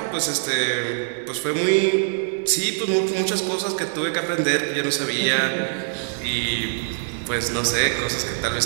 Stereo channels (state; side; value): silent; left; 63 dB below the other